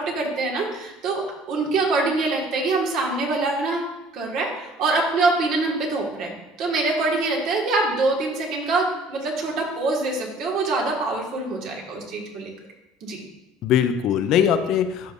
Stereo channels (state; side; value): normal; both; correlation 0.51